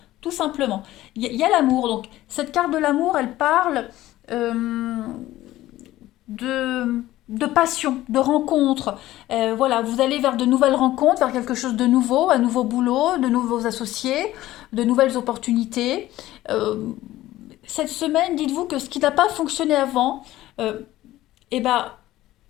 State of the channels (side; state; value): right; quieter; 15.5 dB